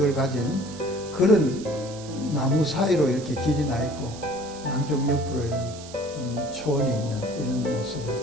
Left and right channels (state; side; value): noise; right; hiss, 16 dB below the sound